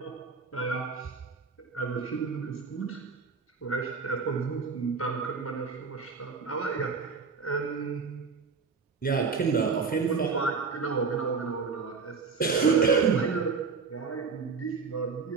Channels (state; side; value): quieter; left; 5.1 dB